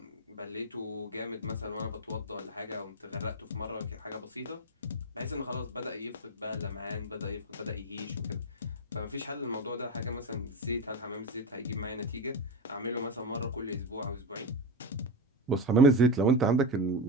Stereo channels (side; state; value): both; normal; correlation 0.15